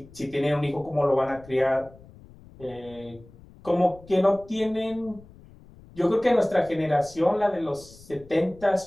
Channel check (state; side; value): noise; left; rumble, 22 dB below the sound